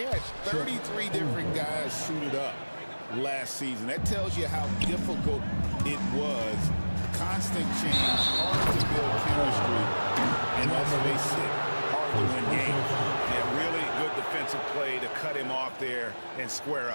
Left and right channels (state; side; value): inverted; both; correlation -1.00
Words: had 33 different guys suited up last season. That tells you how difficult it was. Constant change, hard to build chemistry, and let's face it, hard to win games. Yeah, really good defensive play to cut him off there and square